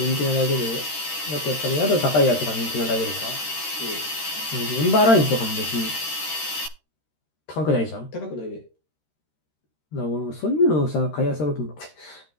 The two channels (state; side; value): late; right; 13 ms